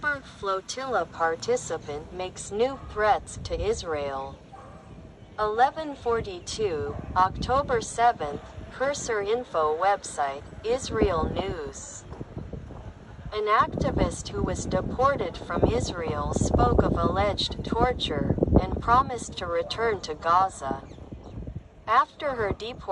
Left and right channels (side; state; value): both; identical; correlation 1.00